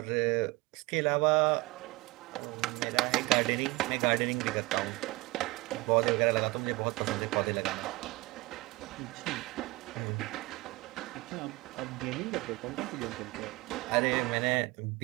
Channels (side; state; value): left; quieter; 22.2 dB